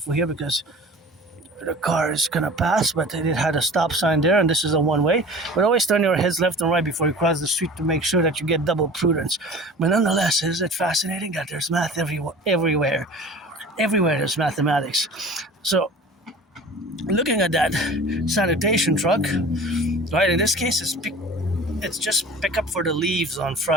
here because the car is gonna pass, but it had a stop sign there, and this is a one-way. But always turn your heads left and right before you cross the street to make sure that you get double prudence. But nonetheless, isn't it fascinating that there's math everywhere? Everywhere there's mathematics. So looking at that sanitation truck, right, in this case it's just pick up for the leaves on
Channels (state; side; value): normal; both; correlation 0.41